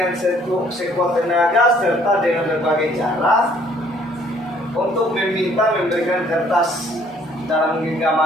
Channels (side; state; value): both; normal; correlation 0.61